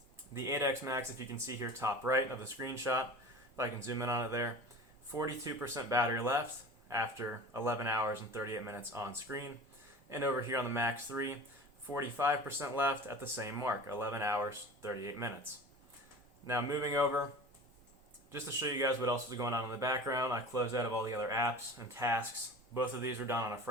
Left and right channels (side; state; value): both; normal; correlation 0.37